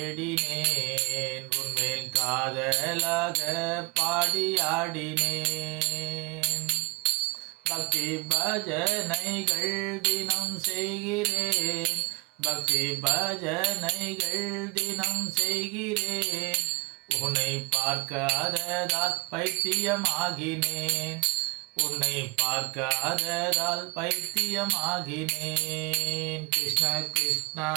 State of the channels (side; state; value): left; quieter; 26.5 dB